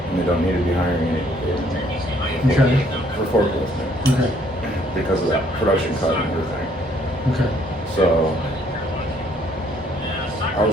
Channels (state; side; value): normal; both; correlation 0.64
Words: and they don't need to be hiring anybody for forklifting. Okay. Because of that production cut and everything. Okay. So I